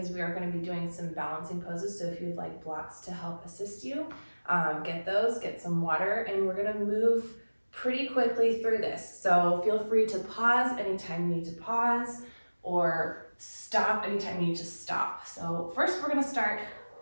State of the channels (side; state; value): both; inverted; correlation -1.00